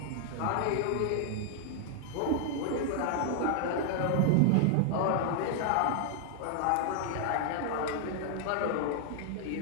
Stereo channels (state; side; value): different; both; correlation 0.00